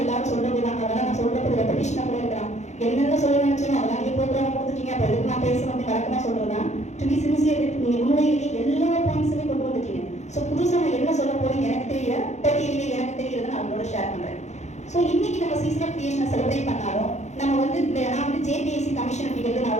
எல்லாரும் சொல்கிறது தான். அதெல்லாம் நான் சொல்கிறது ரெப்படிஷனாக கூட இருக்கிறான். என்னென்ன சொல்ல நினச்சோம் அதெல்லாம் நீங்கள் ப்ரோக்ராம் கொடுத்துட்டீங்க. அப்போ எதுக்கு நான் பேசுகிறேன் அப்படி வழக்கமாக சொல்கிறது தான். டு பி சின்சியர் நீங்கள் உண்மையிலேயே எல்லா பாயிண்ட்ஸுமே கொண்டு வந்துட்டீங்க. ஸோ புதுசாக நான் என்ன சொல்ல போறேன் எனக்கு தெரியல, பட்டியலே எனக்கு தெரியறதை நான் அவங்களோட ஷேர் பண்ணுறேன். ஸோ இன்னைக்கு நம்ம சீசன் ஆஃப் கிரியேஷனை செலிப்ரேட் பண்ணாலும் நம்ம வந்து நான் வந்து JPIC கமிஷன் அப்படிங்கிறது நான்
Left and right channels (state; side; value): late; right; 0.33 ms